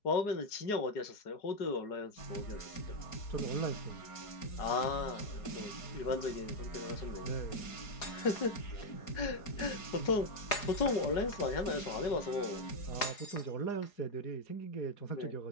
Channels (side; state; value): right; late; 4.8 ms